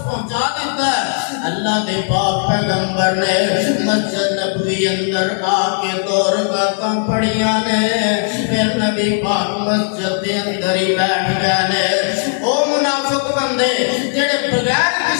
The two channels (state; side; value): silent; right; 67 dB below the other